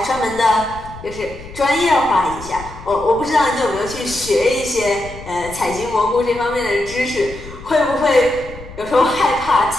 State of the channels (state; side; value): noise; left; rumble, 16 dB below the sound